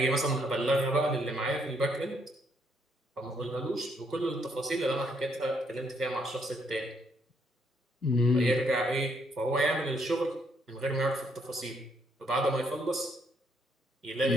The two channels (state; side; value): normal; both; correlation 0.72